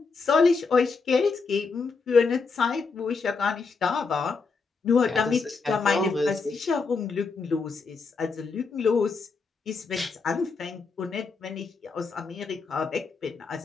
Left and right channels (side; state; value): right; quieter; 4.6 dB